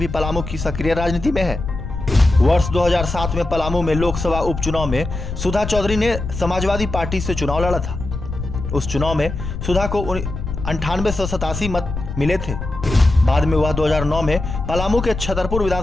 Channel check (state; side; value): noise; left; rumble, 6 dB below the sound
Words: पलामू की सक्रिय राजनीति में है। वर्ष 2007 में पलामू में लोकसभा उपचुनाव में सुधा चौधरी ने समाजवादी पार्टी से चुनाव लड़ा था। उस चुनाव में सुधा को 9887 मत मिले थे। बाद में वह 2009 में पलामू के छतरपुर